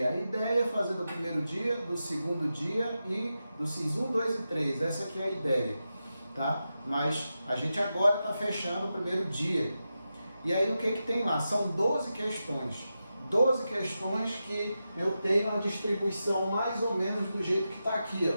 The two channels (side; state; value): both; inverted; correlation -0.90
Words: A ideia é fazer do primeiro dia, do segundo dia e do CIS 1, 2 e 3. Essa aqui é a ideia, tá? Mas a gente agora está fechando o primeiro dia. E aí o que tem lá? São 12 questões. 12 questões que eu tenho uma distribuição mais ou menos do jeito que está aqui, ó.